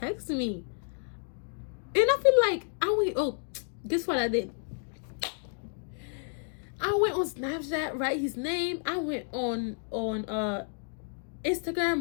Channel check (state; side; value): silent; right; 57 dB below the other